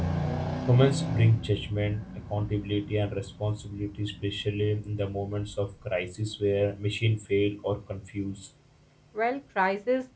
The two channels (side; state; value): both; identical; correlation 1.00